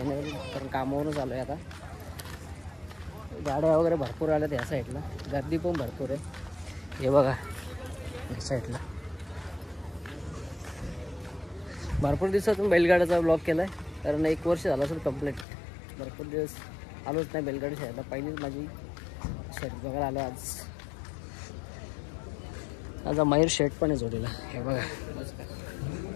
कारण कामावरूनच आलो आहे. आता गाड्या वगैरे भरपूर आल्यात या साईडला. गर्दी पण भरपूर आहे. हे बघा या साईडला भरपूर दिवसातून बैलगाड्याचा ब्लॉग केला आहे. कारण 1 वर्ष झालं असेल कंप्लीट. भरपूर दिवस आलोच नाही बैलगाडी शर्यतीला. पहिलीच माझी शर्यत बघायला आलो आज. माझा मयूर शर्ट पण आहे जोडीला. हे बघा,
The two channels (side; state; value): right; drops out; at 15.5 s